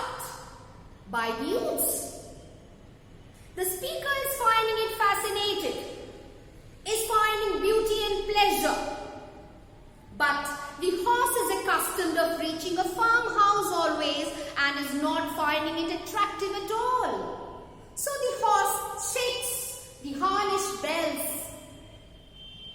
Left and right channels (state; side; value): identical; both; correlation 1.00